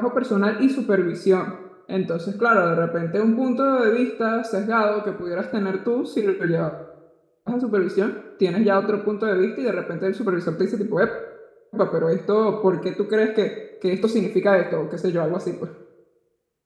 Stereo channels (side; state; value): both; identical; correlation 1.00